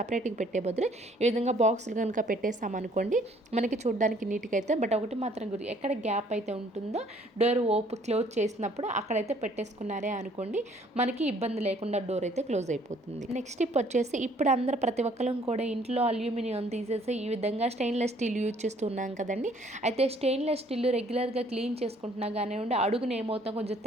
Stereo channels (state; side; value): normal; both; correlation 0.60